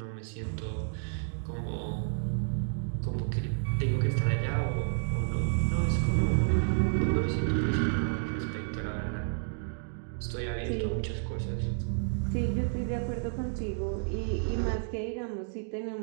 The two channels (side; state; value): left; silent; digital silence